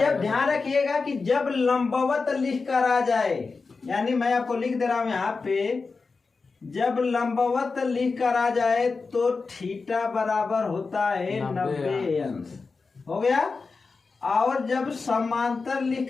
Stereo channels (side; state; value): right; quieter; 4.4 dB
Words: ध्यान रखिएगा कि जब लंबवत लिख कर आ जाए, यानी मैं आपको लिख दे रहा हूं यहाँ पे, जब लंबवत लिख कर आ जाए तो थीटा बराबर होता है 90 अंश। हो गया। और जब समांतर लिख